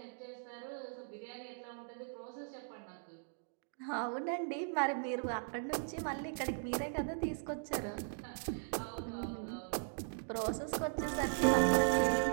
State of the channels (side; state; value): left; silent; digital silence